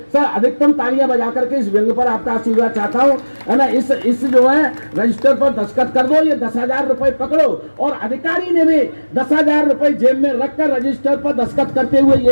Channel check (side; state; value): both; inverted; correlation -1.00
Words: सर अधिकतम तालियां बजा करके इस व्यंग पर आपका आशीर्वाद चाहता हूं, है ना। इस जो है रजिस्टर पर दस्तखत कर दो, ये 10,000 रुपए पकड़ो। और अधिकारी ने भी 10,000 रुपए जेब में रखकर रजिस्टर पर दस्तखत करते हुए